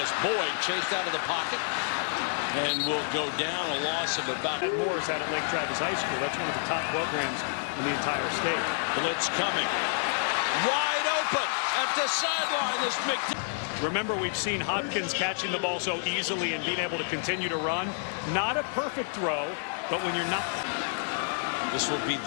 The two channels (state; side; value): silent; right; digital silence